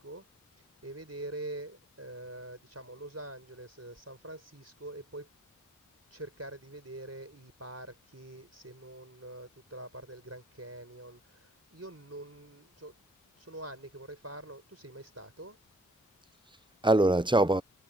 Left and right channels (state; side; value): normal; both; correlation 0.63